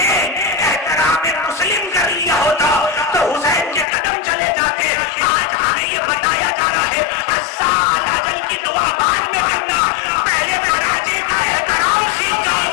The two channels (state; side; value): drops out; right; at 3.9 s